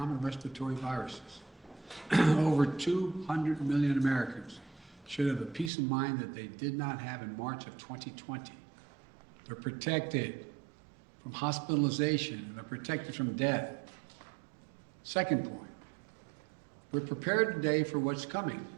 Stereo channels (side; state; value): left; drops out; at 5.7 s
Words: respiratory viruses. Over 200 million Americans should have the peace of mind that they did not have in March of 2020. They're protected from hospitalization, and they're protected from death. Second point, we're prepared today for what's coming.